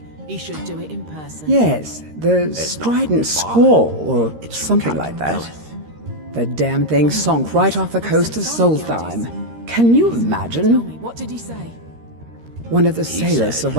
Yes, the strident scrawl, or something like that. The damn thing sunk right off the coast of SOLSTHEIM. Can you imagine? What did he say? One of the sailors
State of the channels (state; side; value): late; left; 13 ms